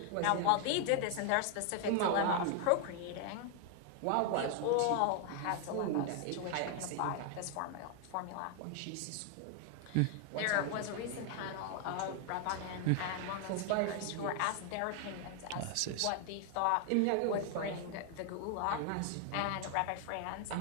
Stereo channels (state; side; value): different; both; correlation 0.00